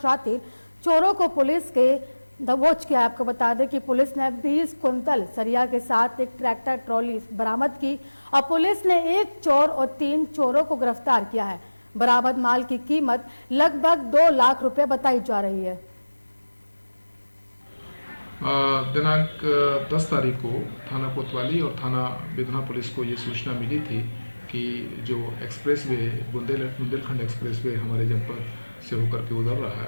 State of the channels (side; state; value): both; inverted; correlation -1.00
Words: चोरों को पुलिस के दबोच किया। आपको बता दें कि पुलिस ने 20 कुंतल सरिया के साथ एक ट्रैक्टर ट्रॉली बरामद की और पुलिस ने 1 चोर और 3 चोरों को गिरफ्तार किया है। बरामद माल की कीमत लगभग 2 लाख रुपए बताई जा रही है। दिनांक 10 तारीख को थाना कोतवाली और थाना विधुना पुलिस को ये सूचना मिली थी कि जो एक्सप्रेसवे बुंदेलखंड एक्सप्रेसवे हमारे जनपद से होकर के उधर रहा है,